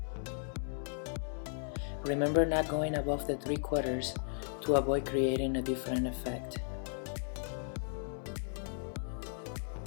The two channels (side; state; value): right; silent; 54 dB below the other